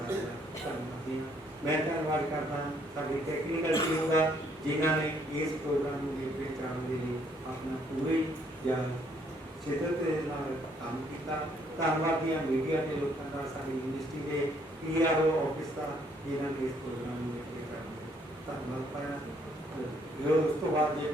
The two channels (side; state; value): both; normal; correlation 0.67